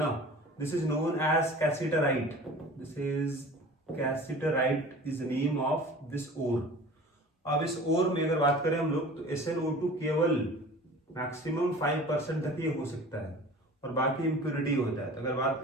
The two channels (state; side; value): normal; both; correlation 0.42